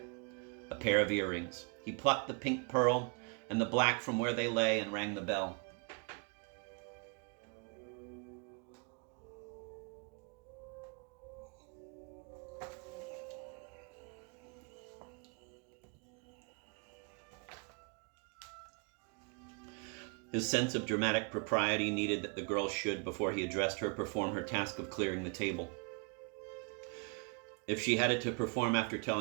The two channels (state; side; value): quieter; left; 36.2 dB